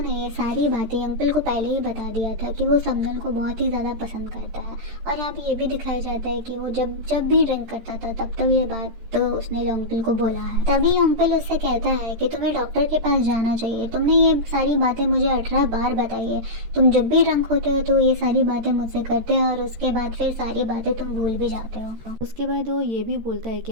ये सारी बातें अंकल को पहले ही बता दिया था कि वो समदल को बहुत ही ज़्यादा पसंद करता है। और यहाँ पे ये भी दिखाया जाता है कि वो जब जब भी ड्रिंक करता था तब ये बात तो उसने अंकल को बोला है। तभी अंकल उससे कहता है कि तुम्हें डॉक्टर के पास जाना चाहिए। तुमने ये सारी बातें मुझे 18 बार बताई है। तुम जब भी ड्रंक होते हो तो ये सारी बातें मुझसे करते हो और उसके बाद फिर सारी बातें तुम भूल भी जाते हो। उसके बाद वो ये भी बोलता है कि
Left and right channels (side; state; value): left; late; 13 ms